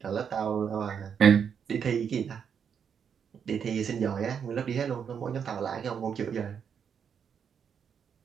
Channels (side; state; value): left; quieter; 7.4 dB